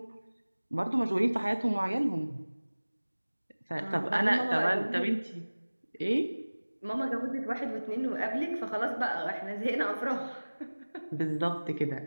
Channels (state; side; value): inverted; both; correlation -1.00